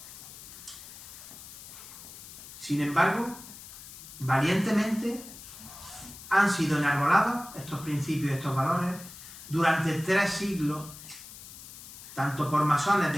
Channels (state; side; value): noise; left; hiss, 15 dB below the sound